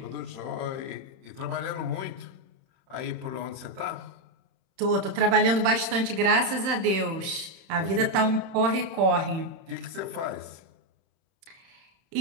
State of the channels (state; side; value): late; left; 31 ms